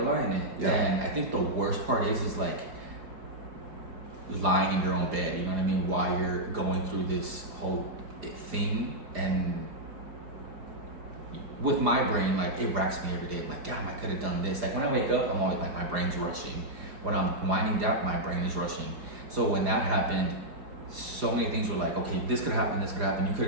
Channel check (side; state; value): left; late; 4.9 ms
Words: lie in it. Yeah. And I think the worst part is like lying in your own bed, you know what I mean, while you're going through this whole thing. And with my brain, like, it racks me every day. I'm like, damn, I could have done this. Like, when I wake up, I'm always like, my brain's rushing. When I'm winding down, my brain is rushing. So when that happened, so many things were like, okay, this could happen, you could